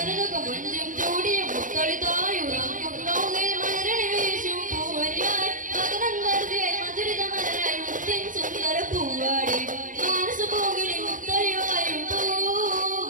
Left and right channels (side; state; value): left; late; 0.38 ms